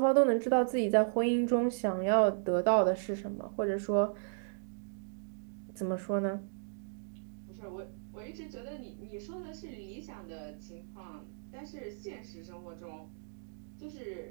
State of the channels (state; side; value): silent; left; digital silence